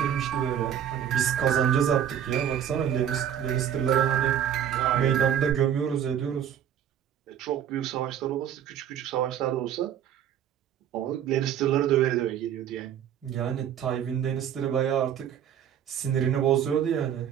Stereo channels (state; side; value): quieter; left; 9.6 dB